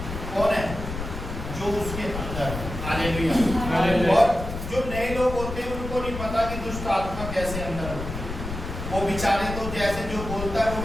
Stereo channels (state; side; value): noise; left; rumble, 7 dB below the sound